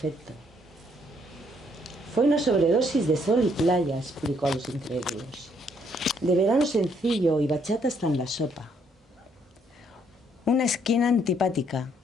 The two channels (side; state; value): both; normal; correlation 0.69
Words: Fue una sobredosis de sol y playa, explicó a los incrédulos. De verano sencillo y bachata hasta en la sopa. Una esquina antipática